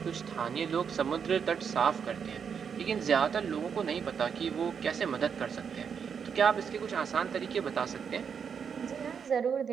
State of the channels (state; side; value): quieter; left; 6.9 dB